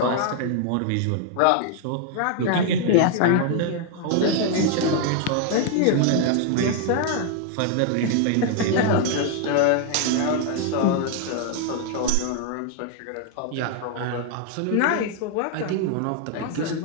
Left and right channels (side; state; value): both; different; correlation 0.00